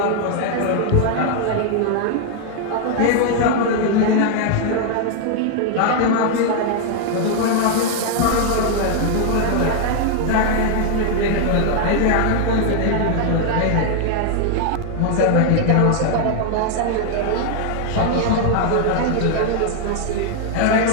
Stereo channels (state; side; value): different; both; correlation 0.00